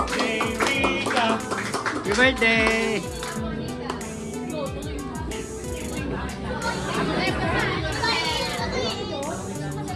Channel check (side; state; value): both; identical; correlation 1.00